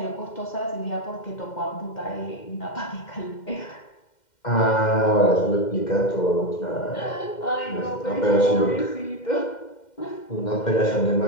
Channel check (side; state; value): right; late; 2.1 ms